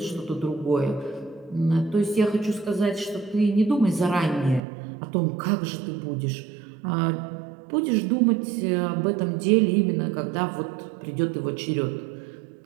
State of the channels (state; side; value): drops out; left; at 4.6 s